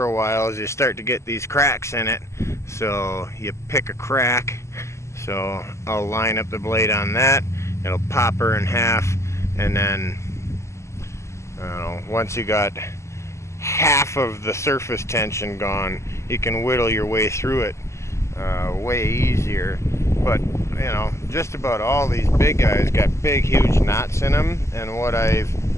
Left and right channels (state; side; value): late; right; 0.13 ms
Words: a while is you start to get these cracks in it. So you pick a crack. So I'll line up the blade on that. It'll pop her in half, and then once you got half of the surface tension gone, you can whittle your way through it way easier. But you know, just about all these big guys got big huge knots in them, and what I've